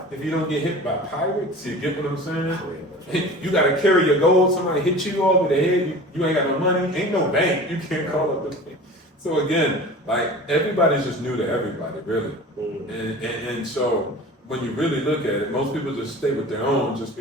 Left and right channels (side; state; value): both; normal; correlation 0.38